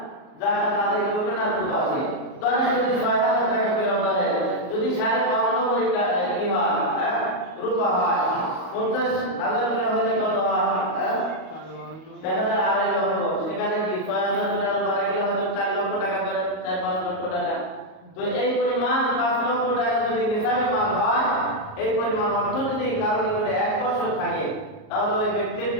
জাকাত আদায় করবে না তো আসে। ধরেন যদি ৬,০০০ টাকা ফেরত দেন, যদি ৫.৫ টাকা কি হয় রূপা হয়, ৫০,০০০ করে হলে কত হয় দেখা যায় ২.৫ লক্ষ। সেখানে কি ৬,০০০ করে আরো বাড়া গেলে হয়তো ৪ লক্ষ টাকা ধরে ৪-৫ লক্ষ টাকা। তো এই পরিমাণ ৫ লক্ষ টাকা যদি নিসাবি মাল হয়, এই পরিমাণ অর্থ যদি কারো নিকটে ১ বছর থাকে তাহলে ওই ব্যক্তির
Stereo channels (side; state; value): right; late; 38 ms